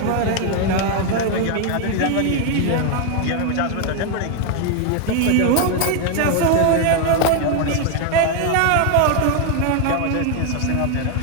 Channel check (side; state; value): both; different; correlation 0.01